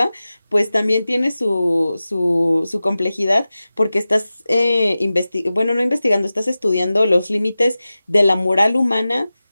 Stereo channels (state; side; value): inverted; both; correlation -0.95